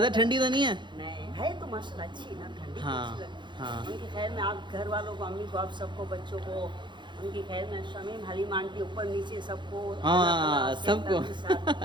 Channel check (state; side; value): late; left; 0.23 ms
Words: ठंडी तो नहीं है? नहीं है तो माशाल्लाह अच्छी ना, ठंडी हाँ, तो अच्छी है। हाँ। उनकी खैर में आप घर वालों को, अम्मी को, आप सबको, बच्चों को, उनकी खैर में शमीम हलीम आंटी ऊपर नीचे सबको, हाँ सबको